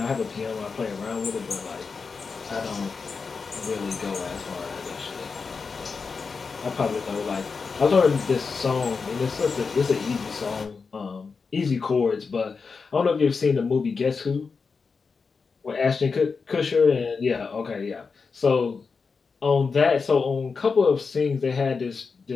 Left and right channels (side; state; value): right; quieter; 5.0 dB